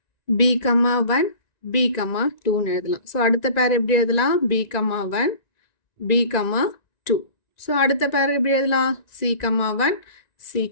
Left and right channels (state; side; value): late; right; 1.9 ms